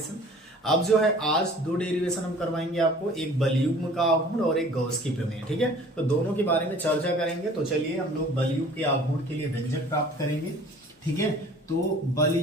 अब जो है आज 2 डेरिवेशन हम करवाएंगे आपको, एक बलयुग्म का आघूर्ण और एक गॉस की प्रमेय। ठीक है, तो दोनों के बारे में चर्चा करेंगे। तो चलिए हम लोग बलयुग्म के आघूर्ण के लिए व्यंजक प्राप्त करेंगे। ठीक है, तो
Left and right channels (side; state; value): both; normal; correlation 0.48